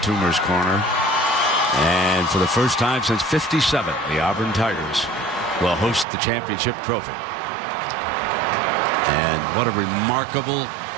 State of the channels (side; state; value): left; drops out; at 6.1 s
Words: Corner. And for the first time since '57, the Auburn Tigers will host the championship trophy. And what a remarkable